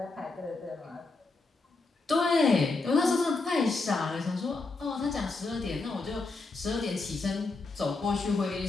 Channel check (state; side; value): quieter; right; 3.7 dB